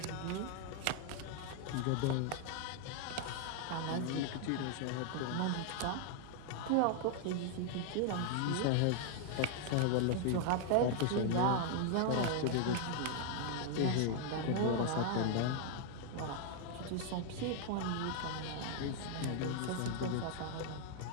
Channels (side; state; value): both; different; correlation 0.00